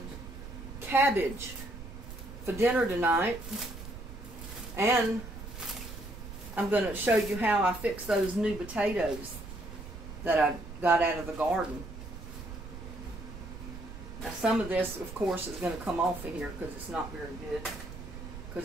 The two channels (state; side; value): noise; right; rumble, 12 dB below the sound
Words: cabbage for dinner tonight. And I'm going to show you how I fix those new potatoes that I got out of the garden. Now some of this, of course, is going to come off of here because it's not very good.